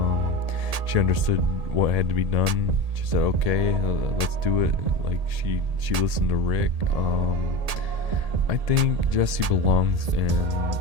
She understood what had to be done. She said, "Okay, let's do it." Like she listened to Rick. I think Jessie belongs in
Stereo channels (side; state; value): left; late; 1.7 ms